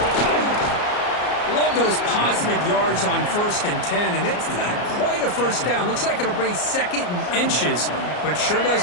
Love those positive yards on 1st and 10, and it's not quite a first down. Looks like it'll bring 2nd and inches, but sure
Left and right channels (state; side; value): late; right; 34 ms